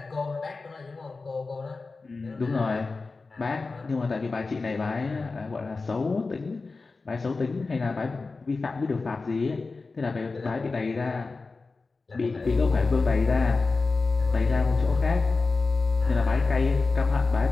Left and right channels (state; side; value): quieter; right; 3.9 dB